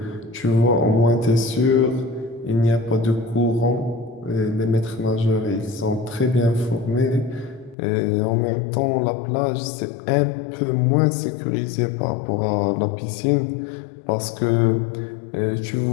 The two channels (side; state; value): right; drops out; at 7.8 s